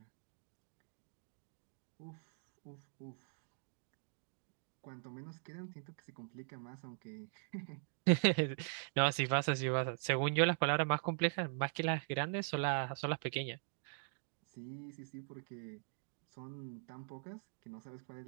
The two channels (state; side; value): silent; left; digital silence